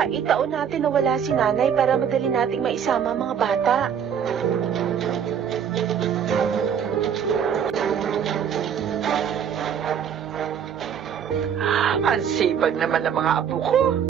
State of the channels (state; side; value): quieter; left; 8.0 dB